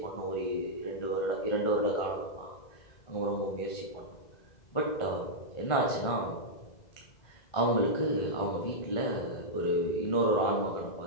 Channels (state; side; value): late; right; 2.0 ms